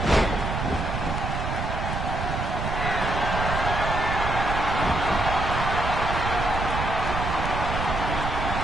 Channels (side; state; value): right; noise; rumble, 3 dB below the sound